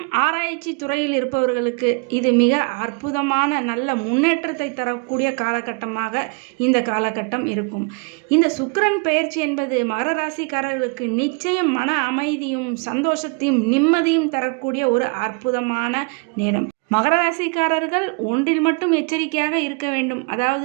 ஆராய்ச்சி துறையில் இருப்பவர்களுக்கு இது மிக அற்புதமான நல்ல முன்னேற்றத்தை தரக்கூடிய காலகட்டமாக இந்த காலகட்டம் இருக்கும். இந்த சுக்கிரன் பெயர்ச்சி என்பது மகர ராசிக்காரர்களுக்கு நிச்சயம் மன அமைதியும் சந்தோஷத்தையும் நிம்மதியும் தரக்கூடிய ஒரு அற்புதமான நேரம். மகர ராசிக்காரர்கள் ஒன்றில் மட்டும் எச்சரிக்கையாக இருக்க வேண்டும்.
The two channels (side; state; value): left; quieter; 33.3 dB